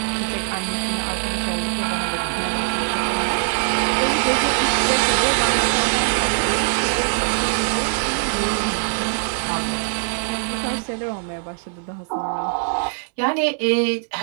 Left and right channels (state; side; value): silent; left; 64 dB below the other